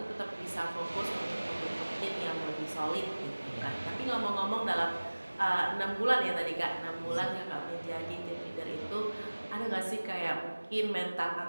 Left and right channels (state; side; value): inverted; both; correlation -1.00